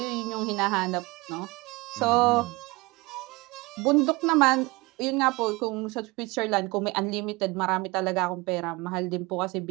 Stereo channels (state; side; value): quieter; left; 23.7 dB